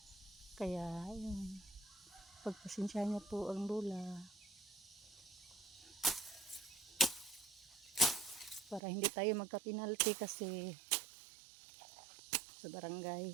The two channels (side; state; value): left; drops out; at 8.8 s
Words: Kaya yun. Pagpasensya niya po ang lola. Para hindi tayo magka-penalty kasi sa barangay.